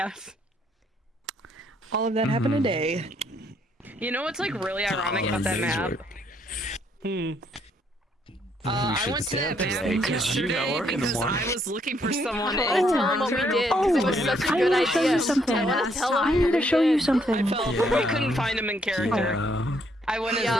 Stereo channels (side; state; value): both; normal; correlation 0.71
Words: All of that happened today. You know what's like really ironic about that map? I went to that map yesterday because I was looking for someone. I wanna tell him what we did because it was such a good idea. I want to tell him. I need to show you something. We couldn't find him in character. I went as